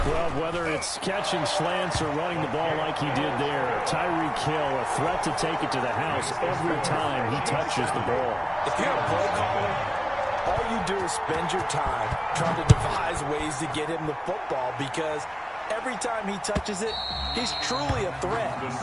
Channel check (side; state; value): both; identical; correlation 1.00